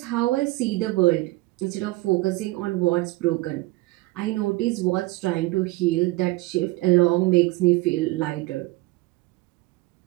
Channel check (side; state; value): left; quieter; 20.3 dB